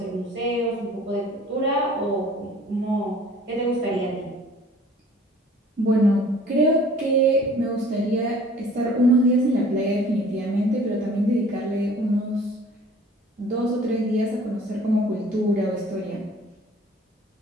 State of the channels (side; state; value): both; normal; correlation 0.50